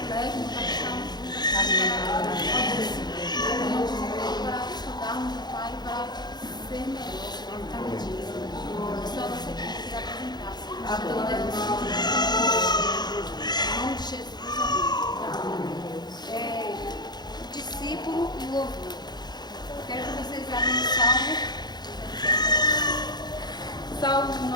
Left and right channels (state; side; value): late; right; 0.20 ms